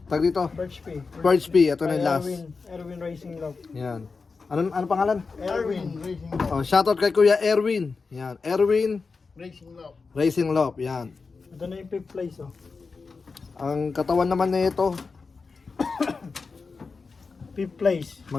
tag dito. Perch Pay. Purge P, ito na yung last. Erwin Racing Love. Yan. Ano pangalan? Erwin Racing Love. Oh, shoutout kay Kuya Erwin. Yan, Erwin Racing Love. Racing Love. Yan. Ito na yung 5th place oh. Ang katawan naman nito, 5th place.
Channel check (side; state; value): right; quieter; 4.5 dB